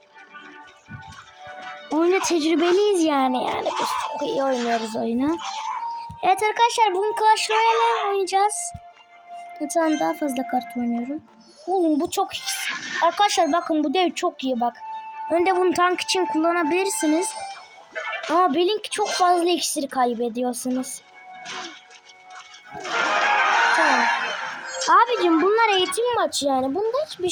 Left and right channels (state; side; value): identical; both; correlation 1.00